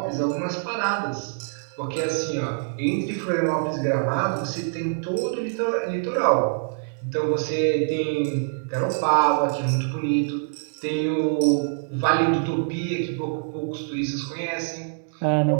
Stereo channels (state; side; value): silent; left; 62 dB below the other